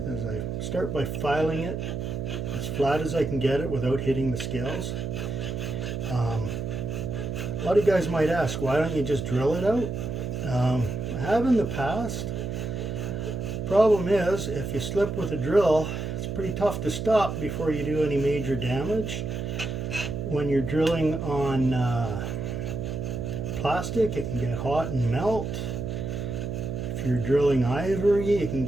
is I start by filing it as flat as I can get it without hitting the scales. A lot of you guys might ask, why don't you just drill it out? I have in the past. Problem is, if you slip with a drill, it's pretty tough to stop before you do any major damage. When you're drilling on plastic, it can get hot and melt. If you're drilling ivory, it can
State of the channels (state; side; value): noise; right; hum, 4 dB below the sound